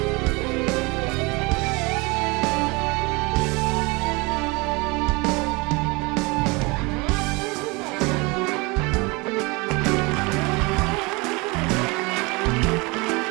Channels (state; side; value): quieter; left; 26.4 dB